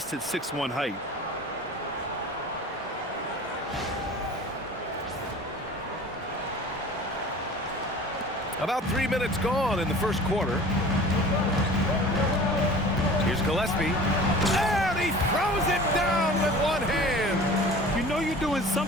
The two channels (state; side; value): normal; both; correlation 0.42